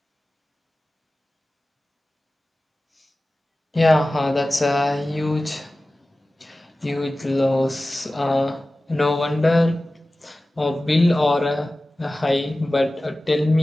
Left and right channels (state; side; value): normal; both; correlation 0.96